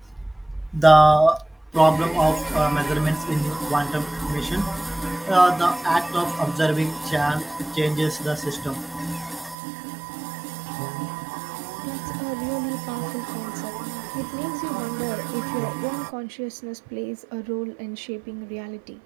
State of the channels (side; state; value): left; drops out; at 9.6 s